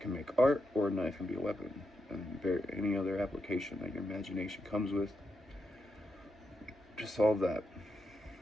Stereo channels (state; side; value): normal; both; correlation 0.84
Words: make art, or a knife can be a weapon. And any other application that your imagination comes with to solve that.